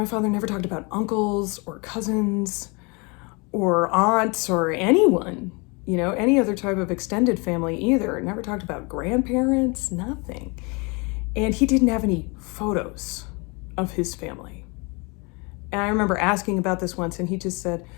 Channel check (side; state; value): right; quieter; 29.9 dB